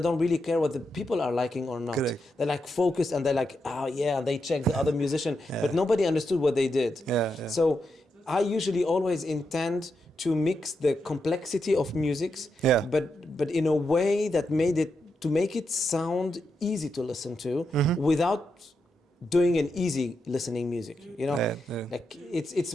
really care what the people are liking or not. Correct. They're like focused and they're like, they check the other musician, but nobody understood what they did. So I usually always intend to mix the complexity of musics, but in a way that make it sound easy to listen to without doing an easy listening music. Like it's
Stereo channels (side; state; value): both; normal; correlation 0.84